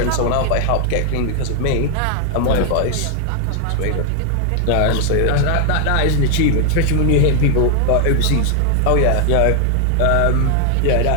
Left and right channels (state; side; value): different; both; correlation 0.00